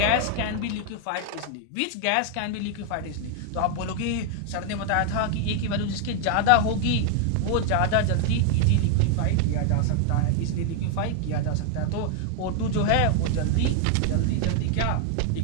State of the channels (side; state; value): both; different; correlation 0.00